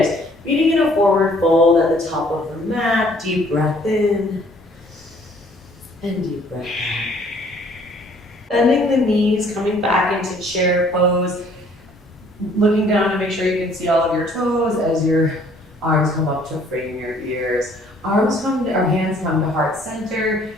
Meeting in a forward fold at the top of the mat. Deep breath in and deep breath out. Bending the knees, coming back into chair pose. Looking down to make sure you can see all of your toes as your arms come up to frame your ears. Hands come to heart center.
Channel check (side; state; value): both; normal; correlation 0.59